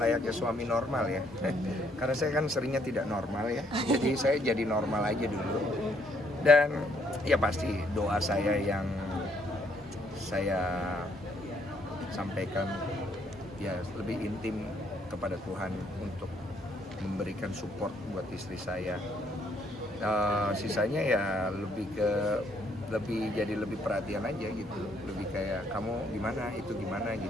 suami normal ya. Karena saya kan seringnya tidak normal ya. Jadi saya jadi normal aja dulu. Dan ya pasti doa saya yang saya sampaikan ya lebih intim kepada Tuhan untuk memberikan support buat istri saya. Sisanya ya jadi lebih perhatian aja gitu, lebih kayak kamu gimana, itu gimana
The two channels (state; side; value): normal; both; correlation 0.69